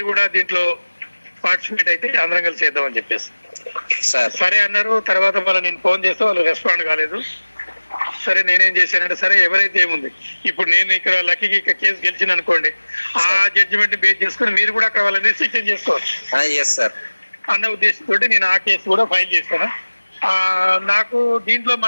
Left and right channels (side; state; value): both; inverted; correlation -1.00